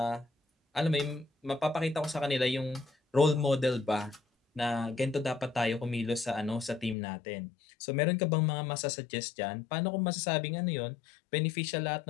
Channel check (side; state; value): right; drops out; at 7.0 s